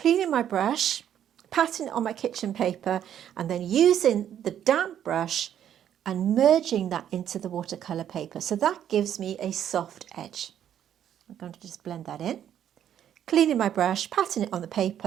my brush, patting it on my kitchen paper, and then using the damp brush and merging that into the watercolour paper. So that gives me a soft edge. I'm going to just blend that in. Cleaning my brush, patting it on the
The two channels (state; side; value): quieter; left; 10.1 dB